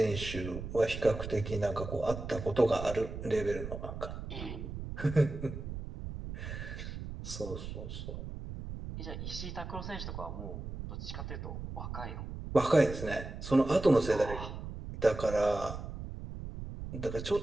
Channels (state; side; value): noise; right; rumble, 8 dB below the sound